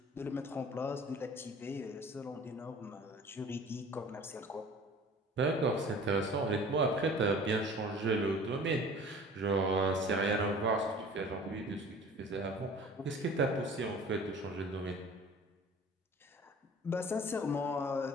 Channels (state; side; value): normal; both; correlation 0.45